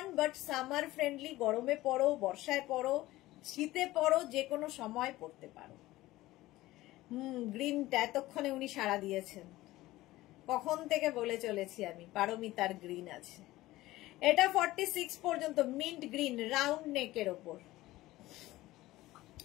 বাট সামার ফ্রেন্ডলি, গরমে পরো, বর্ষায় পরো, শীতে পরো, যে কোনো সময় পরতে পারো। গ্রিনটা এতক্ষণে উনি সাড়া দিয়েছেন, কখন থেকে বলে চলেছি আমি, পারমিতার গ্রিন আছে। এটা 46 পর্যন্ত মিন্ট গ্রিন রাউন্ড নেকের ওপর,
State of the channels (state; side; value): quieter; right; 17.4 dB